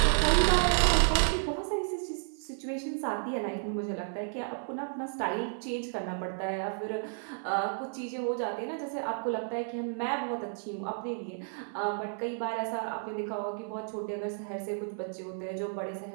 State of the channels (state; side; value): silent; left; 56 dB below the other